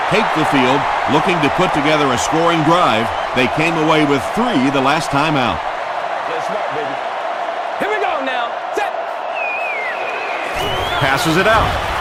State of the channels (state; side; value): identical; both; correlation 1.00